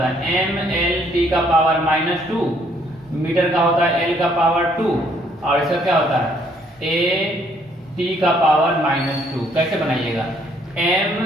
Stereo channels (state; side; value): normal; both; correlation 0.66